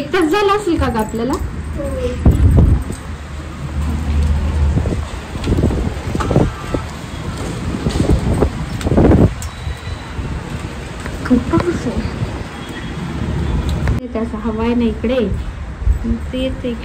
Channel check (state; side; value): identical; both; correlation 1.00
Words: तास झाला असेल का ग आपल्याला? खूप पाऊस आहे. त्याचा हवा आहे ना इकडे. तेच